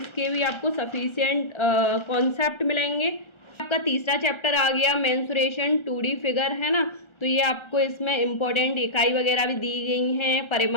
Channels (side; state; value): right; late; 1.3 ms